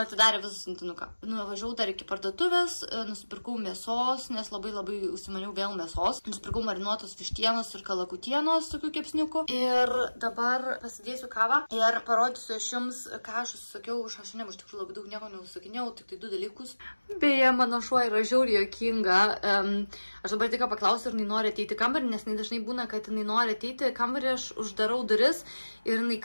visą siuntinuką. Nuvažiavau dar iki parduotuvės, nusipirkau mėsos, nes labai užsimaniau vėl mėsos. Nusipirkau marinuotos vištienos ir kalakutienos, tokių kepsniukų. Ir dabar pasidėsiu kavą ir parodysiu aš jums, ką aš užsisakiau iš H&M. Iš tikrųjų labai daug nieko neužsakinėjau, tik tai 2 dalykus. Beje, mano šuo yra žiauriai juokinga. Aš dabar tik paklausiu, ar jinai nori ateiti į kambarį, nes jinai dažnai būna, kad jinai nori ateiti į kambarį, aš uždarau duris ir jinai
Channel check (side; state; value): both; inverted; correlation -1.00